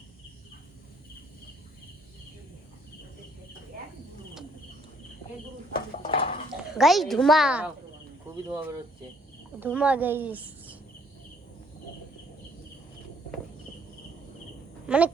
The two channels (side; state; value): both; normal; correlation 0.65